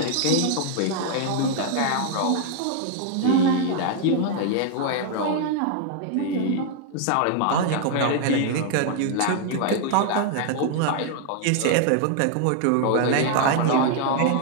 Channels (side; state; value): both; different; correlation 0.00